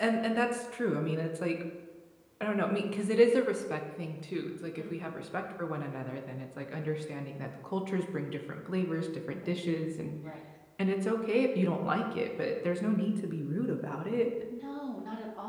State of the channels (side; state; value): both; identical; correlation 1.00